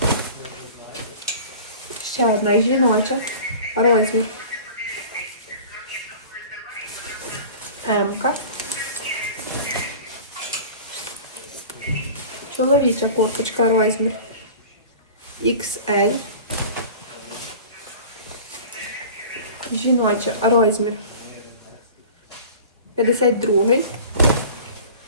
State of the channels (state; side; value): inverted; both; correlation -0.40